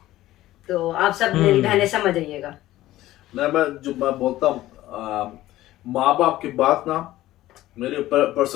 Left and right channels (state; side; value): quieter; right; 15.5 dB